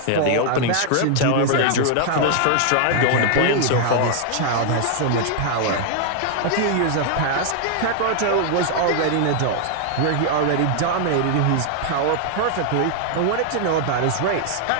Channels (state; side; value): different; both; correlation 0.00